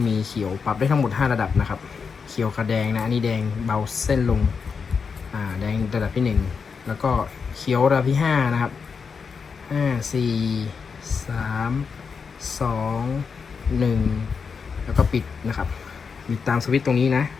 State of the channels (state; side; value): quieter; right; 5.6 dB